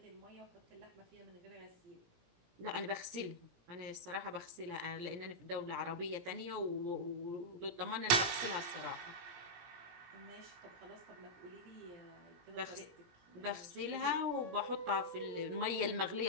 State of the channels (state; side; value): late; left; 17 ms